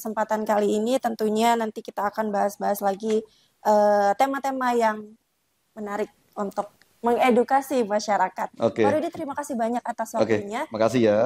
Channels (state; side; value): identical; both; correlation 1.00